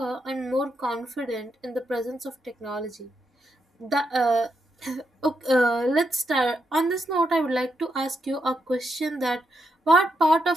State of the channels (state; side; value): normal; both; correlation 0.82